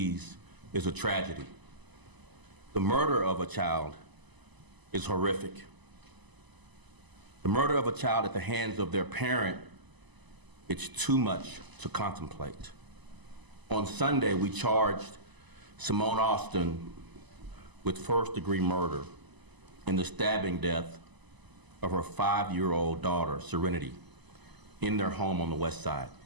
is a tragedy. The murder of a child is horrific. The murder of a child at the hands of their parent, it's too much to contemplate. On Sunday, we charged Simone Austin with first-degree murder in the stabbing death of her 5-year-old daughter, Serenity, in their home on the West Side.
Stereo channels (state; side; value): late; left; 1.0 ms